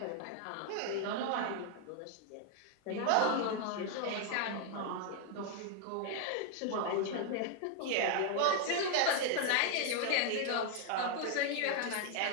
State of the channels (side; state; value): both; different; correlation 0.00